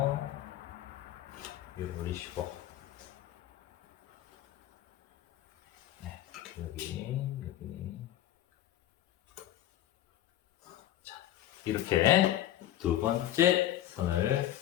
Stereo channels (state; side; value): quieter; right; 12.9 dB